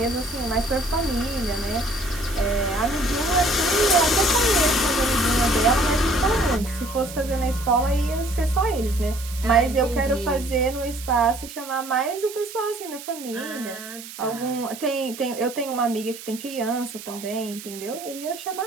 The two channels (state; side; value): noise; right; hiss, 13 dB below the sound